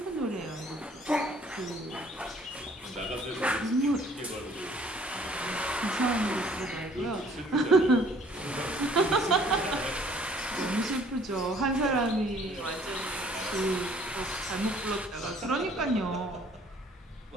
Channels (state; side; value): normal; both; correlation 0.57